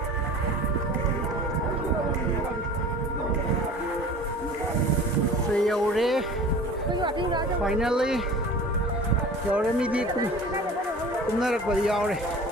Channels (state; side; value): normal; both; correlation 0.41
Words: Yore finally yore mi di kum na rak bari yore